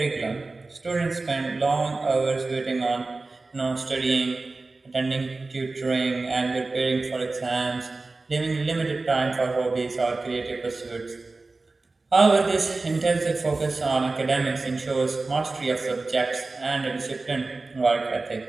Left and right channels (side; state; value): left; quieter; 3.5 dB